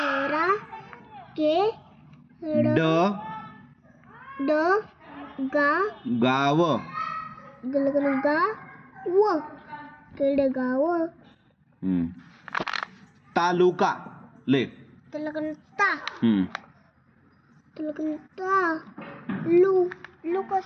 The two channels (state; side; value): identical; both; correlation 1.00